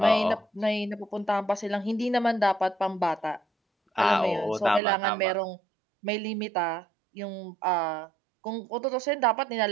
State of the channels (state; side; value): drops out; left; at 4.8 s